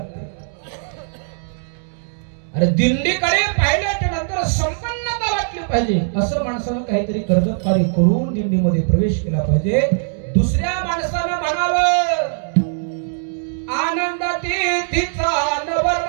अरे दिंडीकडे पाहिल्याच्या नंतर संपन्नता वाटली पाहिजे, असं माणसानं काहीतरी कर्तव्य करून दिंडीमध्ये प्रवेश केला पाहिजे. दुसऱ्या माणसानं म्हणावं आनंदाती तिचा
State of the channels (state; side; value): silent; left; digital silence